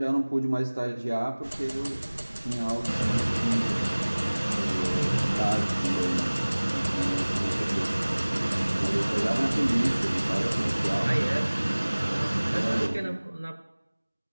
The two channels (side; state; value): both; inverted; correlation -1.00